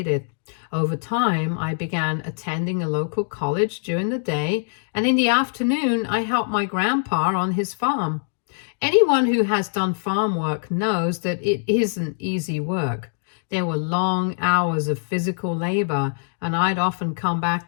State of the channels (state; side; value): silent; right; digital silence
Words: Over time, I began attending a local college during the day, and in the afternoon, I helped my grandpa on his farm. Anyone who has done farm work knows that it isn't easy work. There were long hours of physical labor, and I'd often come back